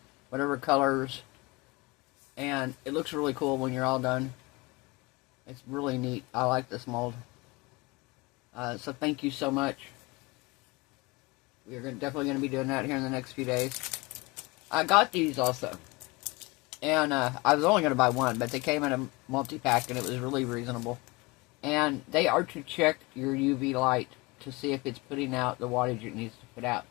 whatever colors, and it looks really cool when you're all done. It's really neat. I like this mold. So thank you so much. We're definitely going to be doing that here in the next few days. I got these also. And I was only going to buy one, but they came in a multi-pack and it was really reasonable. And they are to check your UV light to see if it's putting out the wattage it needs to put out.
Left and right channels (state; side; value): quieter; right; 24.0 dB